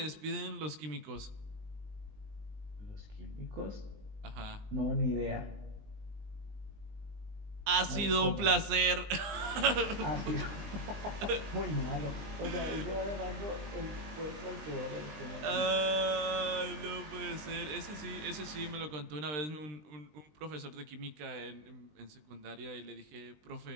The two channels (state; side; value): late; left; 20 ms